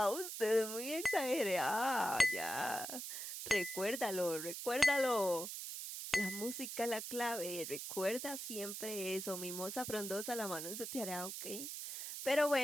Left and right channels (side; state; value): right; noise; hiss, 6 dB below the sound